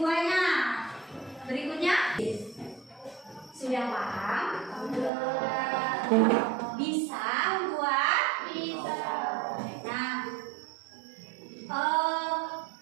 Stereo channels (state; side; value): drops out; left; at 5.1 s